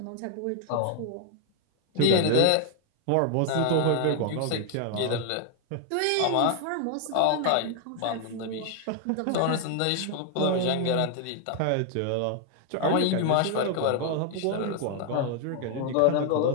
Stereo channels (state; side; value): different; both; correlation 0.00